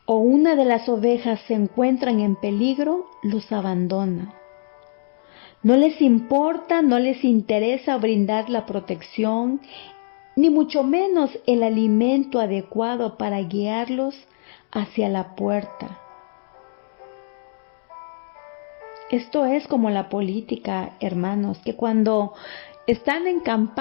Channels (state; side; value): silent; right; digital silence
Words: o una de las ovejas se encuentran en peligro, los abandona. No les importa, no les interesa brindar la protección, ni mucho menos el alimento adecuado para guiarlos hacia la puerta. Esto es como la política, hermanos, que cuando están en